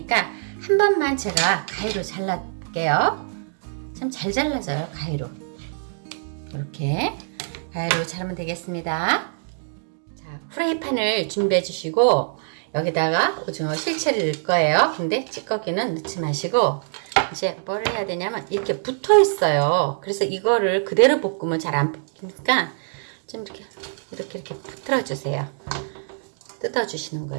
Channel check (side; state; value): left; silent; digital silence